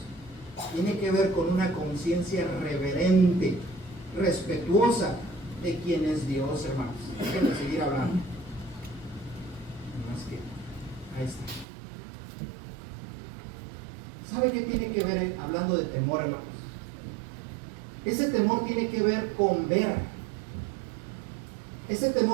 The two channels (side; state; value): left; drops out; at 11.7 s